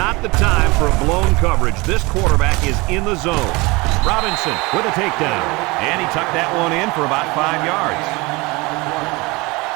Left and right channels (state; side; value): quieter; left; 24.4 dB